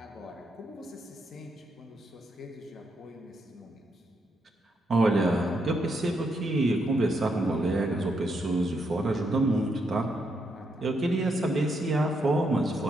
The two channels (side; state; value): both; normal; correlation 0.79